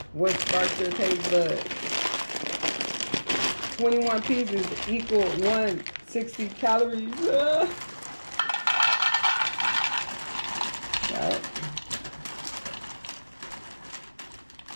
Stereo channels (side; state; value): both; inverted; correlation -1.00